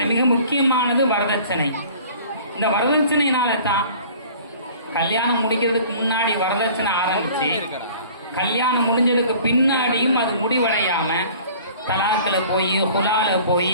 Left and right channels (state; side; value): inverted; both; correlation -0.48